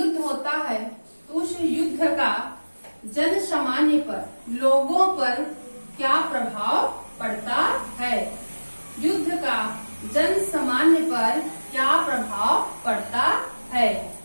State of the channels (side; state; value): both; inverted; correlation -1.00